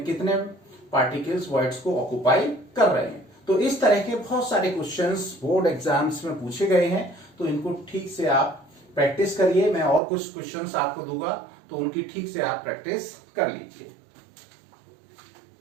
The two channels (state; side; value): drops out; left; at 10.0 s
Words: कितने पार्टिकल्स वॉइड्स को ऑक्यूपाई कर रहे हैं। तो इस तरह के बहुत सारे क्वेश्चंस बोर्ड एग्जाम्स में पूछे गए हैं। तो इनको ठीक से आप प्रैक्टिस करिए। मैं और कुछ क्वेश्चंस आपको दूंगा तो उनकी ठीक से आप प्रैक्टिस कर लीजिए।